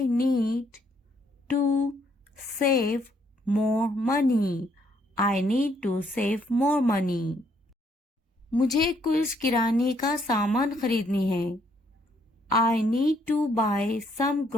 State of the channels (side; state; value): both; normal; correlation 0.69